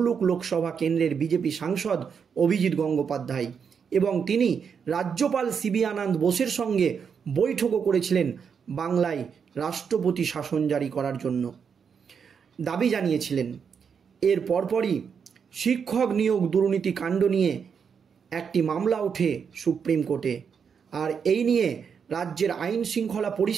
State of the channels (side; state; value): left; quieter; 6.7 dB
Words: লোকসভা কেন্দ্রের বিজেপি সাংসদ অভিজিৎ গঙ্গোপাধ্যায়, এবং তিনি রাজ্যপাল সিবি আনন্দ বোসের সঙ্গে বৈঠকও করেছিলেন বাংলায় রাষ্ট্রপতি শাসন জারি করার জন্য। দাবি জানিয়েছিলেন। এর পরপরই শিক্ষক নিয়োগ দুর্নীতি কাণ্ড নিয়ে একটি মামলা ওঠে সুপ্রিম কোর্টে, আর এই নিয়ে রাজ্যের আইন শৃঙ্খলা